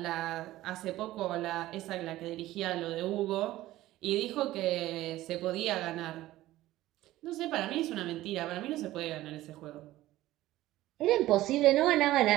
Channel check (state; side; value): quieter; left; 15.9 dB